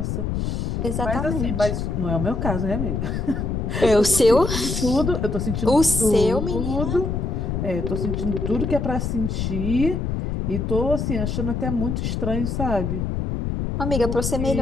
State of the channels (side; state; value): left; noise; rumble, 1 dB below the sound